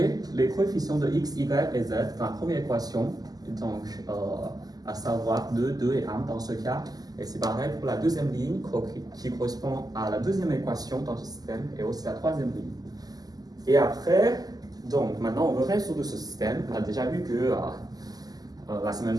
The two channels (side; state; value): left; late; 0.18 ms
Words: les coefficients de x, y et z dans la première équation. Et donc, à savoir 2, 2 et 1 dans ce cas. Et c'est pareil pour la deuxième ligne qui correspond à la deuxième équation dans ce système et aussi la troisième ligne. Et après, donc maintenant on veut résoudre ce système. On a déjà vu que la semaine